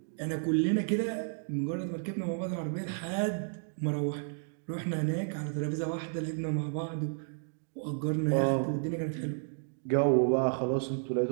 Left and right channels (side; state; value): left; silent; digital silence